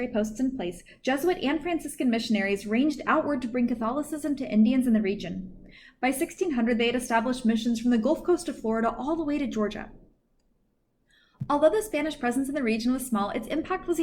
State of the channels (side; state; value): both; identical; correlation 1.00